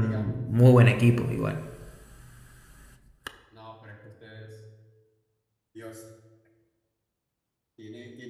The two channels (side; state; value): both; identical; correlation 1.00